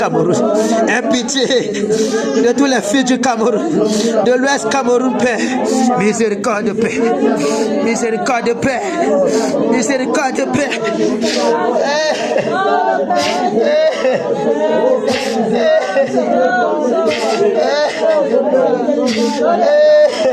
Aie pitié de tous les filles du Cameroun, de l'Ouest Cameroun, Père. Miséricorde, Père. Miséricorde, Père. Miséricorde, Père.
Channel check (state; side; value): identical; both; correlation 1.00